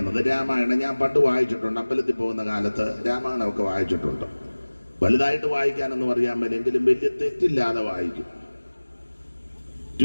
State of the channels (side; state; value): both; inverted; correlation -1.00